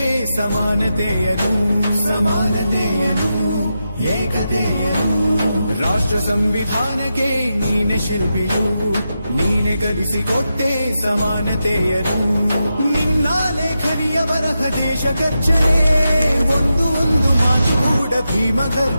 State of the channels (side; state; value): both; inverted; correlation -0.88